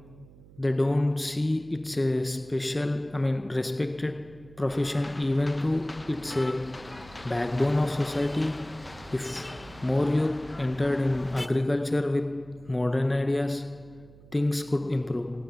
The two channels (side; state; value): right; noise; hum, 22 dB below the sound